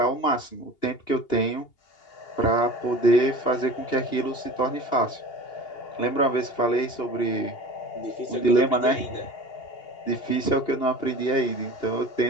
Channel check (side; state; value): right; late; 2.8 ms